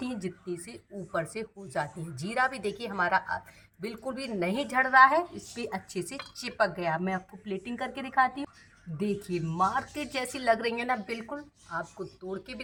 हैं जितनी से ऊपर से हो जाती हैं। जीरा भी देखिए हमारा बिल्कुल भी नहीं झड़ रहा है, इस पर अच्छे से चिपक गया। मैं आपको प्लेटिंग करके दिखाती हूँ। देखिए मार्केट जैसी लग रही है ना, बिल्कुल। आपको तोड़ के भी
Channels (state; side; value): identical; both; correlation 1.00